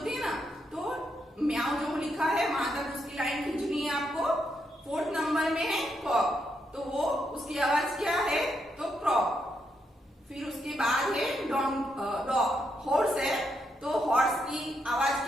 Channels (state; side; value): normal; both; correlation 0.79